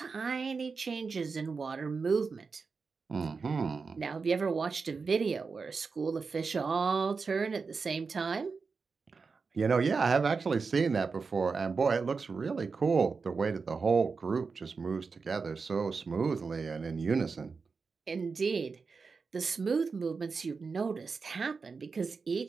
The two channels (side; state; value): left; quieter; 4.8 dB